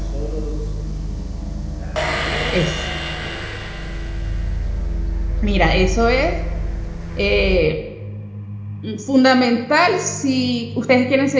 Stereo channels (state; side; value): identical; both; correlation 1.00